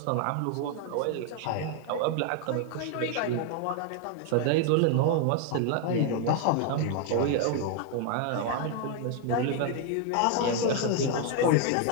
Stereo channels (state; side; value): different; both; correlation 0.01